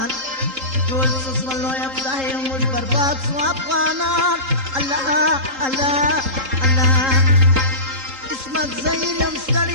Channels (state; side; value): late; left; 3.8 ms